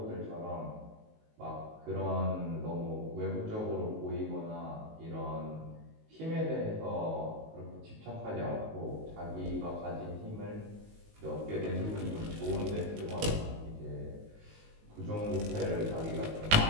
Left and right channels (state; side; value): late; left; 19 ms